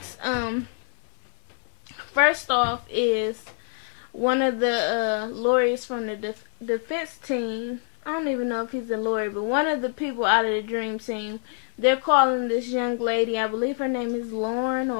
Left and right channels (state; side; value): silent; right; 56 dB below the other